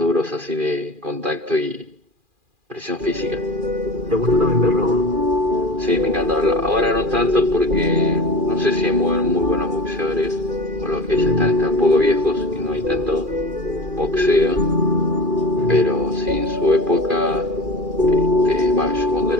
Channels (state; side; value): late; left; 2.4 ms